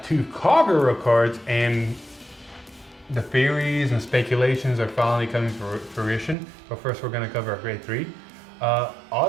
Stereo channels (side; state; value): left; drops out; at 6.4 s